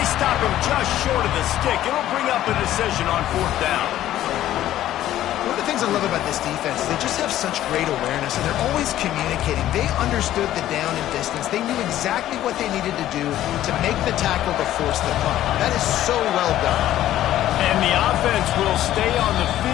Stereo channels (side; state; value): right; quieter; 13.1 dB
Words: stop him just short of the stick. It'll bring up a decision on fourth down. One of the things I love about this defense is they just have such great awareness, and they're always communicating. They understood the down and distance. They knew exactly what they needed to do to make the tackle to force the punt. That is so well done. And the offense will stay on the